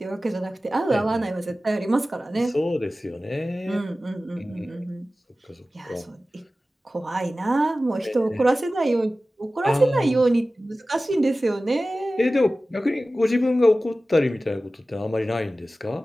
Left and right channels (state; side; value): normal; both; correlation 0.96